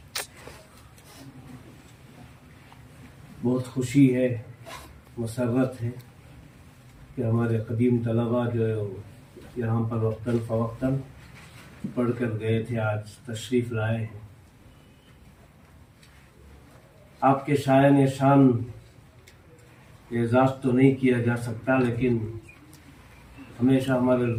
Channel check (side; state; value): both; identical; correlation 1.00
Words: بہت خوشی ہے، مسرت ہے کہ ہمارے قدیم طلباء جو یہاں پر وقتاً فوقتاً پڑھ کر گئے تھے آج تشریف لائے ہیں. آپ کے شایان شان اعزاز تو نہیں کیا جا سکتا، لیکن ہمیشہ ہمارے